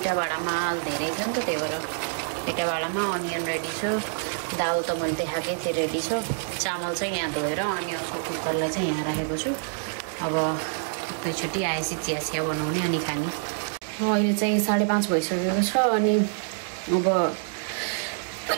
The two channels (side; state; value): left; silent; digital silence